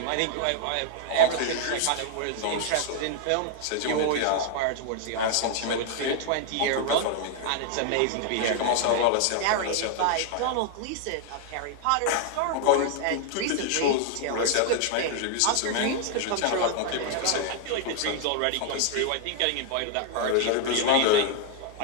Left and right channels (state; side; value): different; both; correlation 0.00